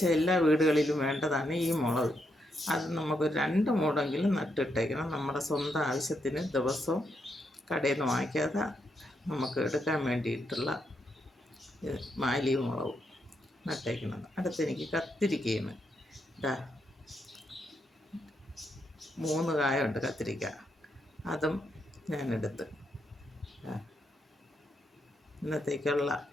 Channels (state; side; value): normal; both; correlation 0.80